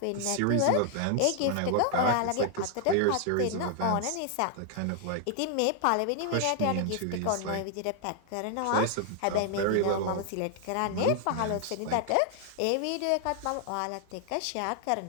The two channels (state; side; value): different; both; correlation 0.00